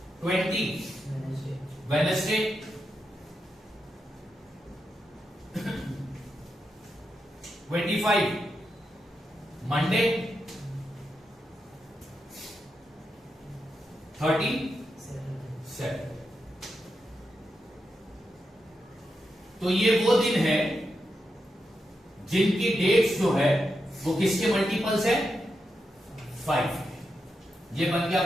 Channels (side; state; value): both; normal; correlation 0.86